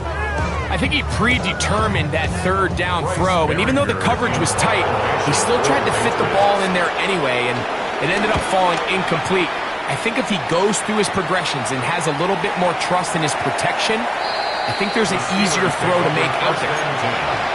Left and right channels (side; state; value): both; identical; correlation 1.00